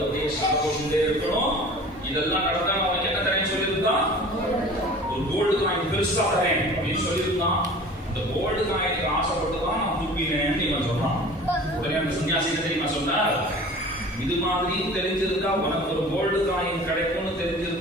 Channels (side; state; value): both; normal; correlation 0.42